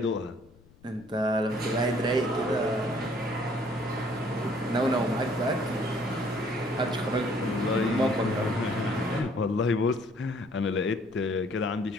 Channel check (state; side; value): noise; left; rumble, 27 dB below the sound